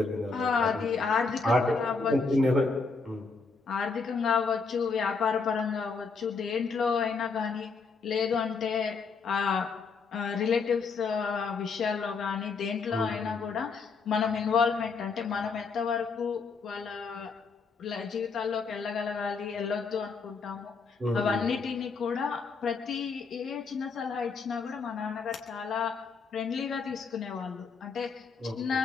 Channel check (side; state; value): right; quieter; 4.7 dB